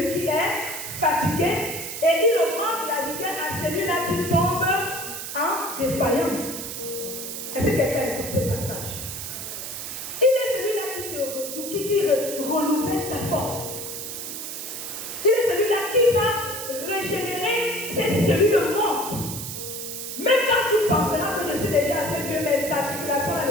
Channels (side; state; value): right; noise; hiss, 7 dB below the sound